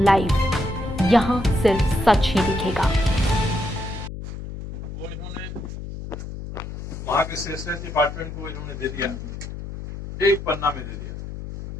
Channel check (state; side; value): noise; left; hum, 9 dB below the sound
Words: live, यहाँ सिर्फ सच ही दिखेगा। वो इन्होंने वहां के सेशंस डिपार्टमेंट को इन्होंने दे दिया, एक पन्ना में दे दिया।